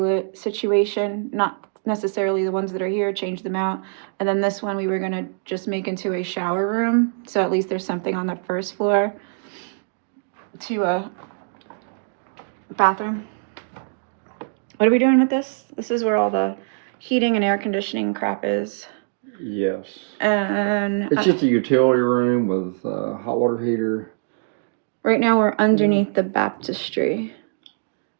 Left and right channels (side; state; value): left; silent; digital silence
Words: situation, not necessarily the ones that are here, change them out. And then this one we were going to just make into a shower room, so at least there's something on the first floor to a bathroom. What are we doing with this? This is where all the heating and air conditioning crap is. Yes. And it's just a utility room with a hot water heater. Right now we're underneath the baptistry.